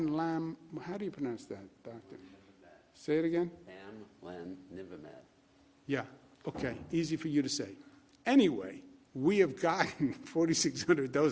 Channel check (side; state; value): both; identical; correlation 1.00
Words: do you pronounce that, doctor? Say it again? Bamlanivimab. Yeah, okay, easy for you to say. Anyway, we have gotten 4,600